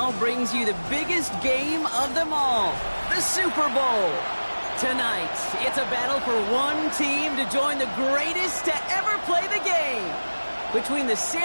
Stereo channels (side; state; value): both; inverted; correlation -1.00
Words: brings you the biggest game of them all, the Super Bowl. Tonight, it's a battle for one team to join the greatest to ever play the game. Between the